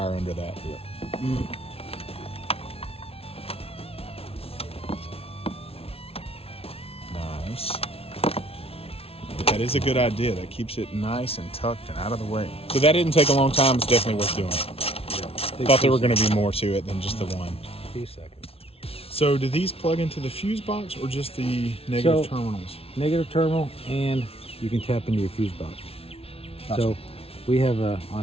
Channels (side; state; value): right; late; 0.28 ms